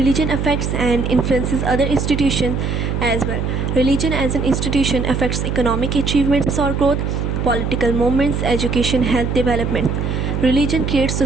affects and influences other institutions as well. Religion as an institution affects economic achievements or growth, political movements, education, health development. Religion creates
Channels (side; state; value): right; noise; hum, 1 dB below the sound